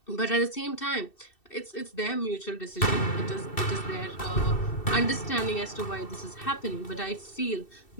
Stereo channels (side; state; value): right; late; 2.7 ms